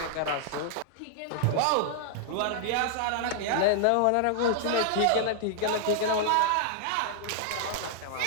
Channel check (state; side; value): different; both; correlation -0.01